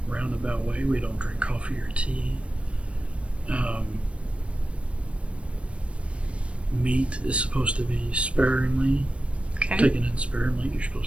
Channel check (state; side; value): late; left; 0.061 ms